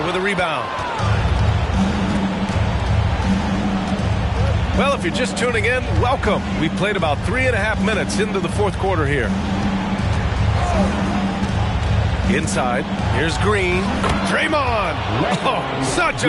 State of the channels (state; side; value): identical; both; correlation 1.00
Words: with a rebound. Well, if you're just tuning in, welcome. We've played about 3.5 minutes into the fourth quarter here. Inside, here's Green. Draymond! Oh, such